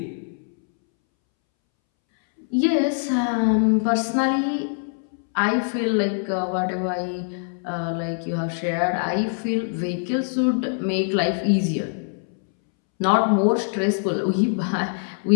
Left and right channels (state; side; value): silent; right; 63 dB below the other